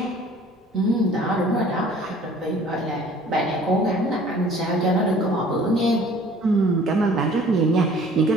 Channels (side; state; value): both; normal; correlation 0.51